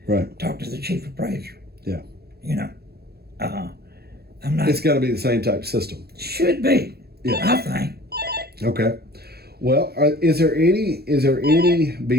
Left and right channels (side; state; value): left; late; 0.46 ms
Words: Right. talk to the chief appraiser. Yeah. I'm not. It's got to be the same type of system. Should be. Yeah. I think. Okay. Well, is there any